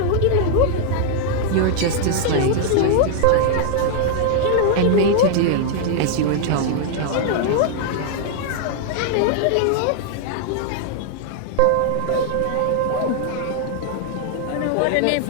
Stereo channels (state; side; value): different; both; correlation 0.00